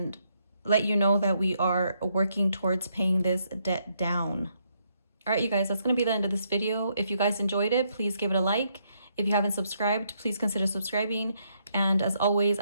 let you know that we are working towards paying this debt down. All right, you guys, that's going to be the end of this video. If you guys enjoyed it, please give it a like. If you haven't subscribed, please consider subscribing. And as always,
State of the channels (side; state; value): both; inverted; correlation -0.74